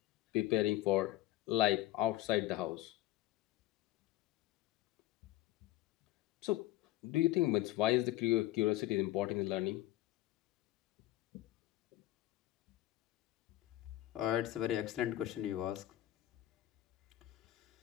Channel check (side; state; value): right; quieter; 15.6 dB